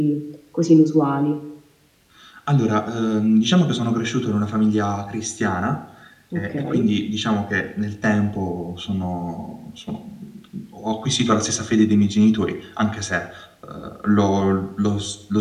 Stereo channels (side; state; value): both; identical; correlation 1.00